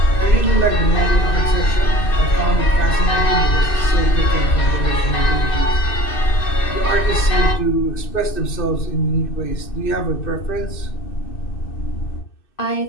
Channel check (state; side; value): late; right; 2.6 ms